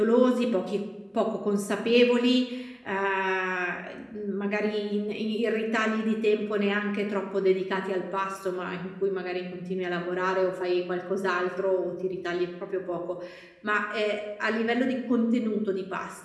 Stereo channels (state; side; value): identical; both; correlation 1.00